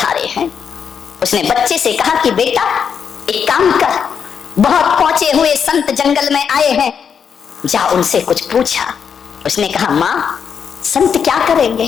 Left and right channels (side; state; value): right; quieter; 7.1 dB